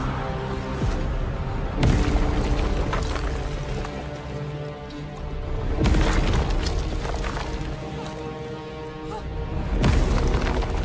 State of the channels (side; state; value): both; identical; correlation 1.00